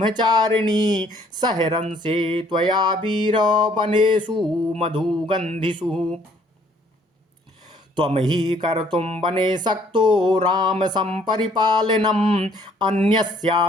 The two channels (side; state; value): both; normal; correlation 0.62